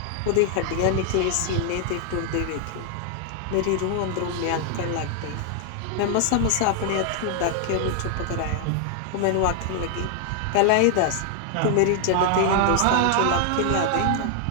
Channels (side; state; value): both; different; correlation 0.00